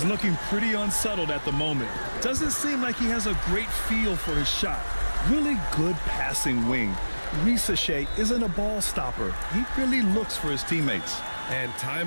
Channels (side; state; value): both; inverted; correlation -1.00